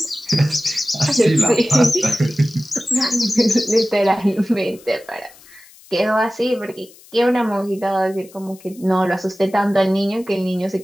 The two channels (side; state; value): left; noise; hiss, 24 dB below the sound